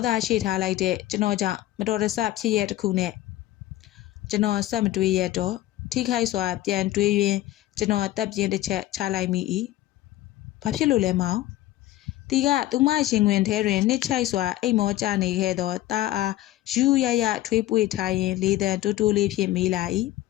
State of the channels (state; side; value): quieter; right; 15.0 dB